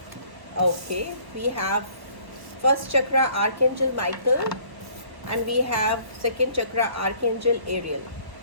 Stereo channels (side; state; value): left; late; 1.1 ms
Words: Okay, we have first chakra archangel Michael and we have second chakra archangel Ariel.